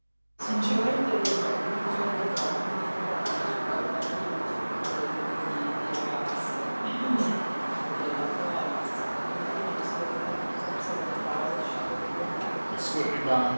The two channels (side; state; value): both; inverted; correlation -1.00